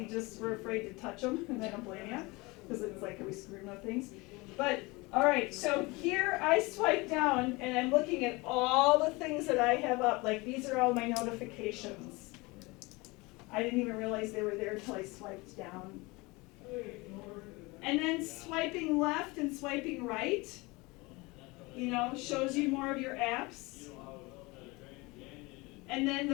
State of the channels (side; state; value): right; quieter; 24.4 dB